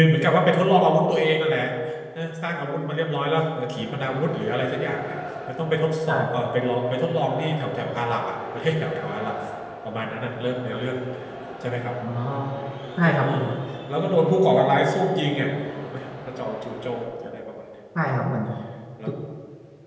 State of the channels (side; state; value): both; identical; correlation 1.00